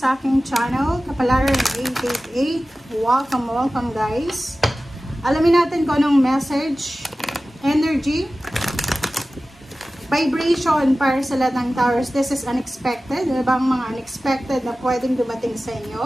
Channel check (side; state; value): both; normal; correlation 0.96